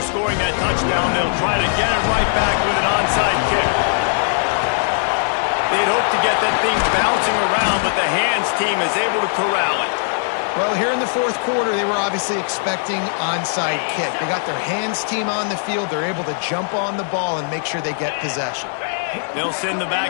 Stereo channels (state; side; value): silent; right; digital silence